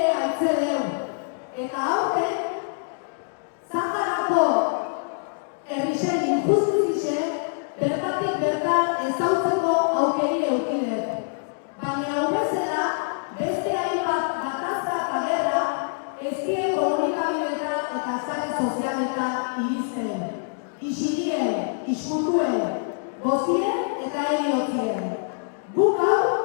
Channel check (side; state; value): right; silent; digital silence